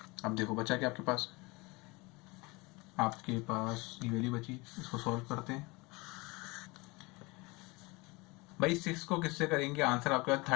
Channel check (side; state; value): right; quieter; 25.1 dB